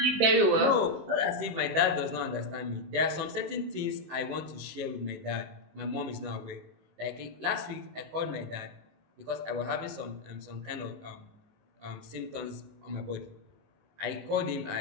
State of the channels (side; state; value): left; late; 18 ms